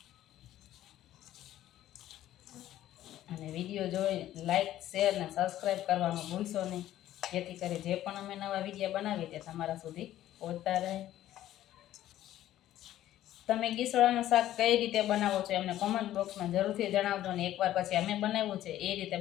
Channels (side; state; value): right; quieter; 13.2 dB